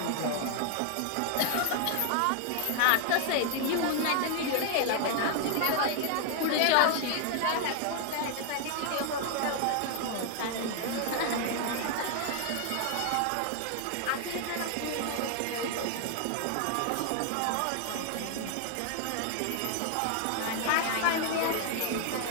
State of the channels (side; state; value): both; different; correlation 0.00